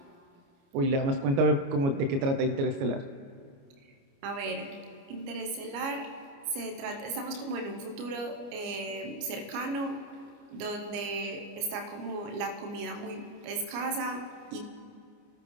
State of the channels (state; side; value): late; left; 29 ms